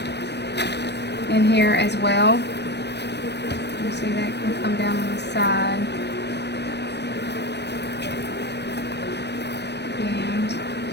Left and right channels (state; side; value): late; right; 0.50 ms